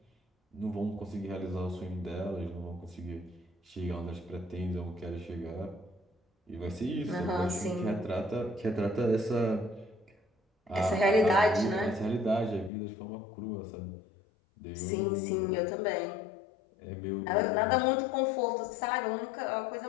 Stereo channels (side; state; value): right; drops out; at 12.7 s